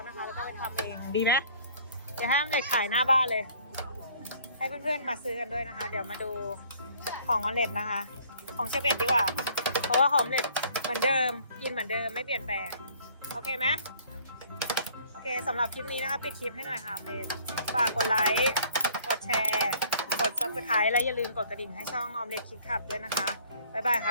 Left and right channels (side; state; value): both; inverted; correlation -0.56